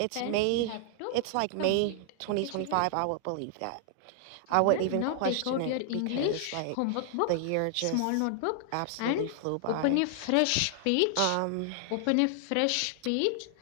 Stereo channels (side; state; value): both; different; correlation 0.00